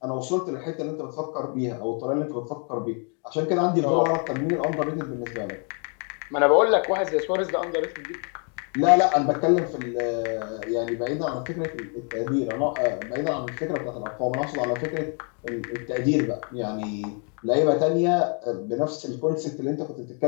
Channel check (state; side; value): quieter; right; 40.0 dB